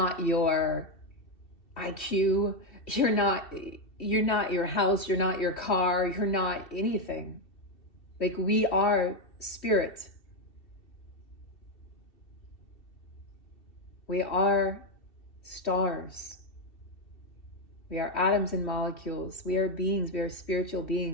your IQ. You're not your house. You're not your car. You're not anything. Like, we are spirit. We are stars. We are atoms and molecules. We are beings. We are spiritual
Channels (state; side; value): late; right; 2.7 ms